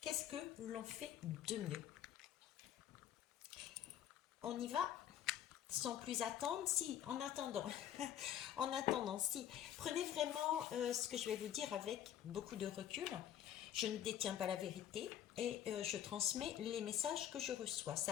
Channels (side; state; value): right; quieter; 10.8 dB